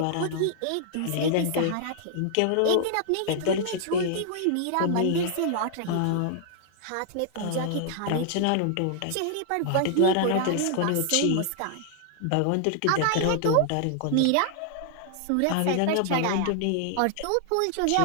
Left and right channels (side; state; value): both; different; correlation 0.00